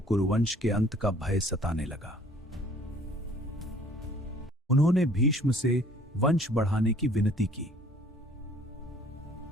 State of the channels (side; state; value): both; normal; correlation 0.55